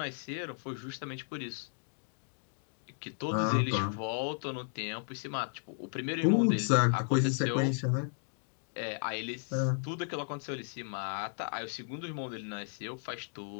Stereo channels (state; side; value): silent; right; digital silence